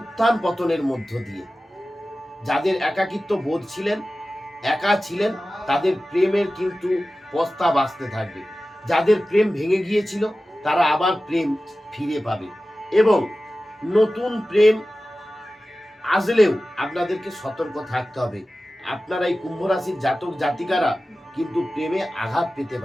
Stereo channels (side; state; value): both; normal; correlation 0.95